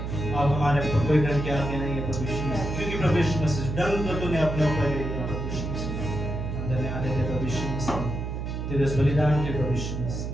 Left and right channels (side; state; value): right; noise; hum, 4 dB below the sound